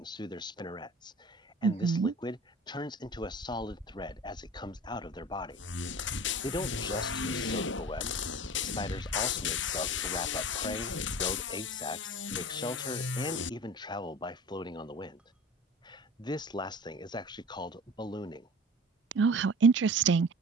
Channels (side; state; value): both; normal; correlation 0.39